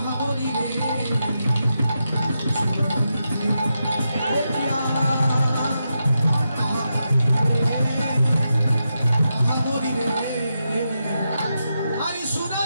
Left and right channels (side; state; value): both; inverted; correlation -0.86